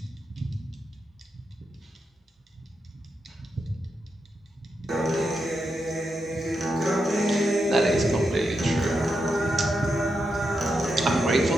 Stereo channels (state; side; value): normal; both; correlation 0.85